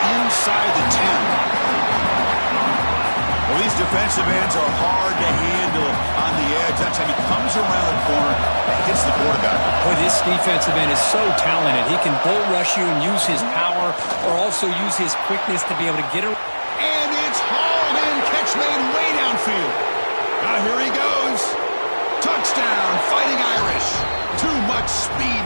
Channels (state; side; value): inverted; both; correlation -1.00